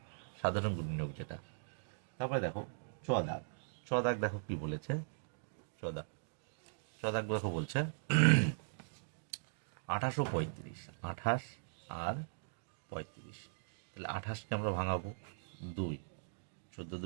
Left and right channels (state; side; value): silent; left; digital silence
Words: সাধারণ গুণনীয়ক যেটা। তারপরে দেখো চ দাগ। চ দাগ দেখো কি বলেছে। চ দাগ, চ দাগ দেখো বলছে 28 ও 35, 28 আর 35, তাহলে 28কে আমরা ভাঙাবো 2, 14